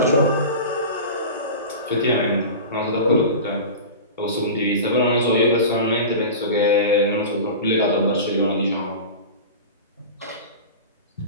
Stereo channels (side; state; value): both; inverted; correlation -0.31